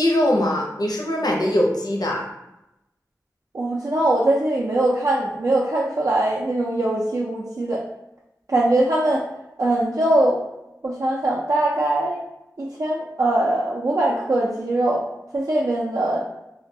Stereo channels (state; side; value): normal; both; correlation 0.84